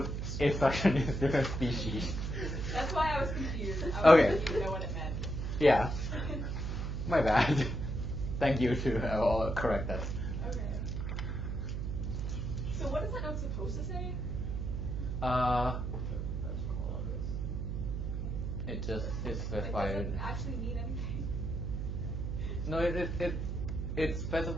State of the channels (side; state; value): right; noise; hum, 2 dB below the sound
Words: instruction in different species. That's why I was confused. I Okay. didn't even know what it meant. Yeah. My bad. Thank you to I'll correct that. Okay. So what is that note supposed to say? It just is It specified. doesn't actually mean anything. No, it